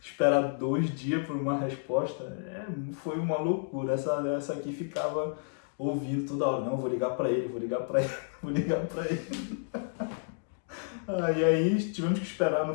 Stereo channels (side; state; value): right; silent; digital silence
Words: 2 dias por uma resposta, foi uma loucura. Essa aqui ficava ouvindo toda hora, não, vou ligar para ele, vou ligar para ele, vou ligar para ele. E aí tivemos que esperar,